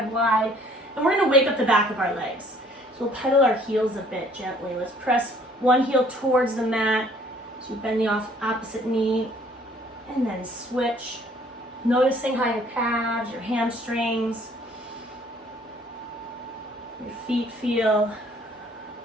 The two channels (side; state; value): both; normal; correlation 0.58